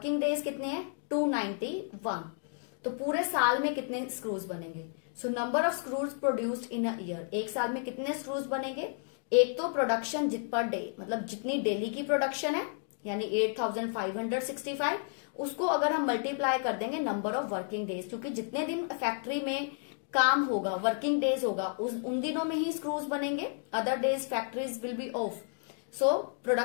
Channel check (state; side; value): silent; right; 56 dB below the other